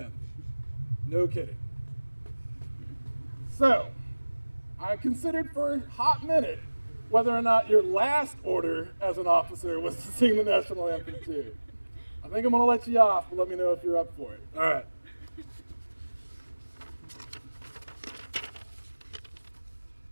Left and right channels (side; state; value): both; inverted; correlation -1.00